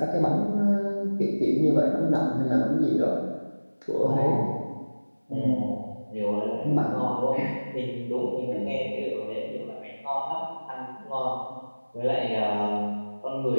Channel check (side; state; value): both; inverted; correlation -1.00